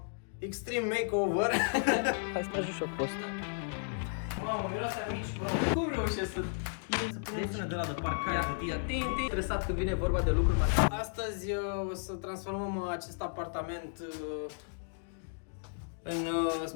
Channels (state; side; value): silent; right; digital silence